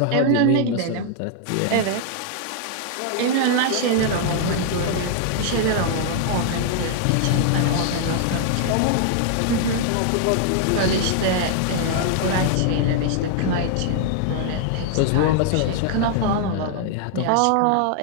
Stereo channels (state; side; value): different; both; correlation 0.00